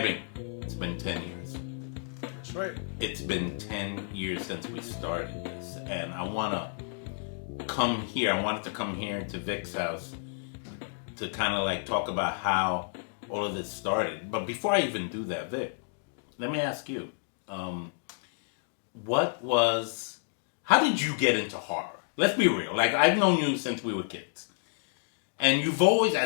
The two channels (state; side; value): silent; right; digital silence